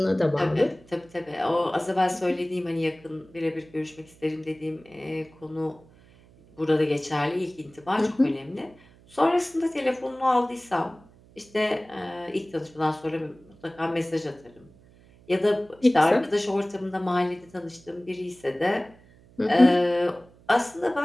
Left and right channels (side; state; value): right; noise; hum, 26 dB below the sound